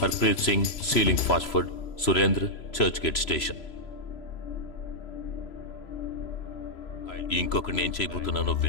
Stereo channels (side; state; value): right; late; 3.0 ms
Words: Harpreet Singh ceiling fast food, Surendra Churchgate station. ఇంకొకటి నేను చేయబోతున్నానో